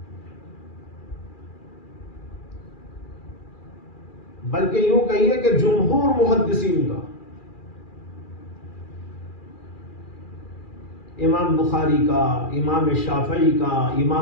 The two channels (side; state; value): right; late; 2.4 ms